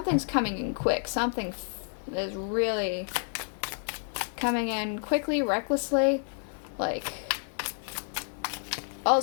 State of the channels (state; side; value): silent; right; 58 dB below the other